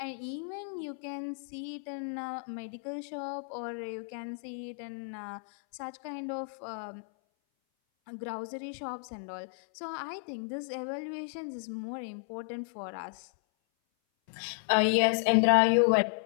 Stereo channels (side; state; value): right; silent; 56 dB below the other